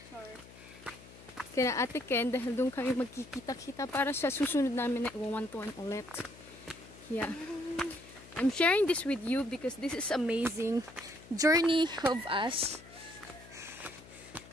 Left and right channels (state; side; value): noise; left; hum, 20 dB below the sound